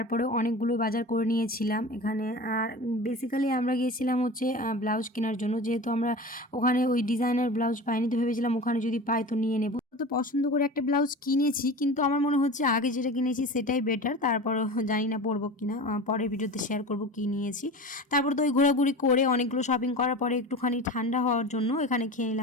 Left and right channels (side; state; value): both; normal; correlation 0.33